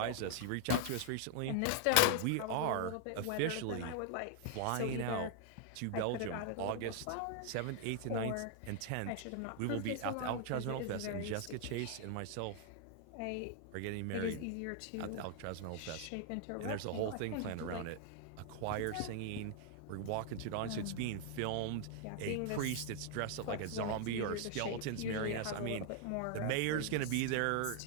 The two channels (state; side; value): different; both; correlation 0.00